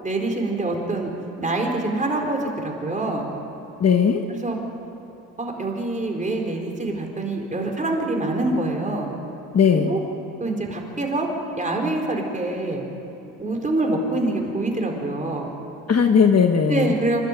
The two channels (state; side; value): normal; both; correlation 0.47